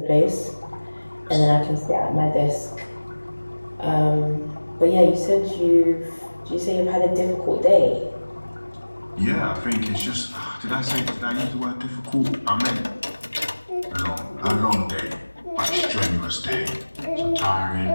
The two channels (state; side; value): inverted; both; correlation -1.00